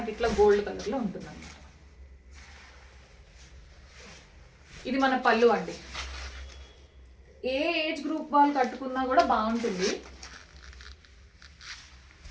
ఇట్లా గోల్డ్ కలర్లో ఉంటుంది అన్నమాట. ఇది మన పళ్ళు అండి. ఏ ఏజ్ గ్రూప్ వాళ్ళు కట్టుకున్నా కూడా బాగుంటుంది.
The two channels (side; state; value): both; identical; correlation 1.00